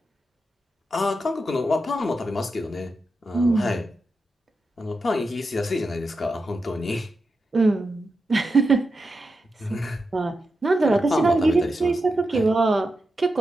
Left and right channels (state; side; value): normal; both; correlation 0.88